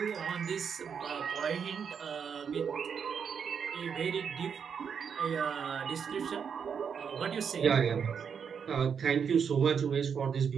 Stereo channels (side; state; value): left; quieter; 6.9 dB